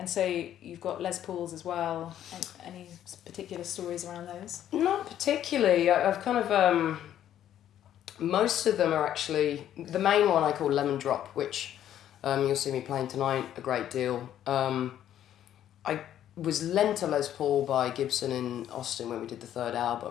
so you've got Les Pauls as well. Any particular stories around those? Not particularly. I've kind of... most of them are actually... The main one I call Lemon Drop, which you'll see me playing tonight a great deal. I was lent a Les Paul by Gibson in Austin when we did the third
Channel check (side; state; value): right; quieter; 11.1 dB